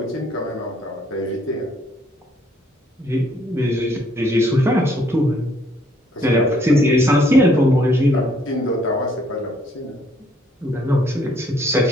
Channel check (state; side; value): normal; both; correlation 0.66